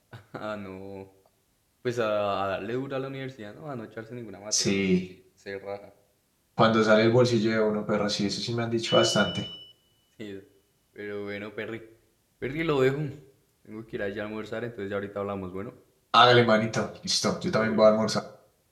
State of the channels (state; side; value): identical; both; correlation 1.00